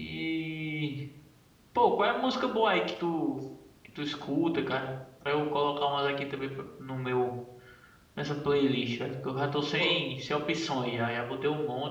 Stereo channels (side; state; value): both; identical; correlation 1.00